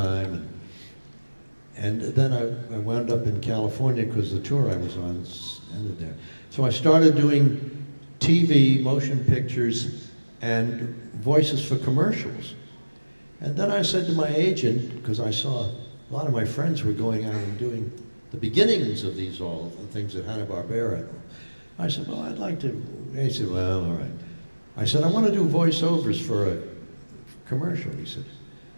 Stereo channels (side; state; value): both; inverted; correlation -1.00